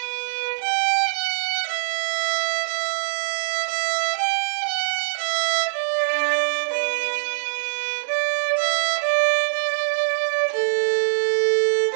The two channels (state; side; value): silent; left; digital silence